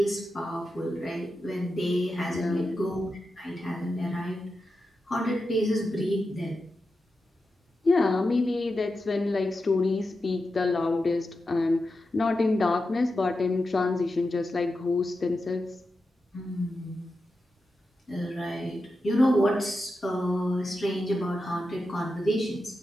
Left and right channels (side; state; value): both; normal; correlation 0.90